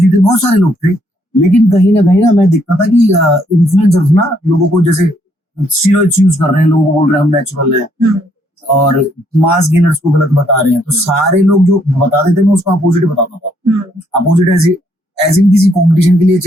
थे, बहुत सारे लोग थे। लेकिन कहीं ना मैं देखता था कि इन्फ्लुएंसर्स ना लोगों को जैसे स्टीरॉइड्स यूज कर रहे हैं, लोगों को बोल रहे हैं हम नेचुरल है, और मास गेनर्स को गलत बता रहे हैं। तो सारे लोग जो बता देते मैं उसका अपोजिट बताता था। अपोजिट एज इन किसी कंपटीशन के लिए,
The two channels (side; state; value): both; normal; correlation 0.70